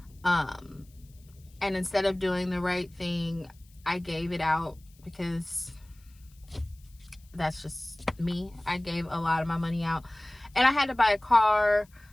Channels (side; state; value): left; noise; hiss, 30 dB below the sound